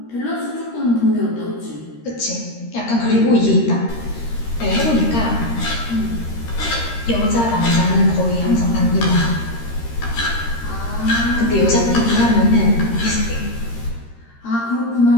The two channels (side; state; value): right; late; 13 ms